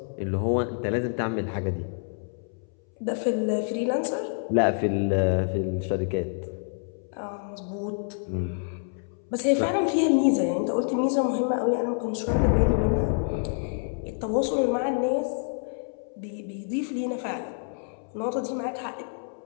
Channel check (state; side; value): silent; right; 60 dB below the other